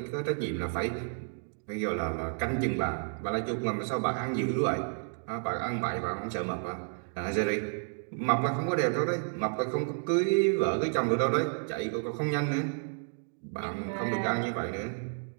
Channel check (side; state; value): left; silent; 57 dB below the other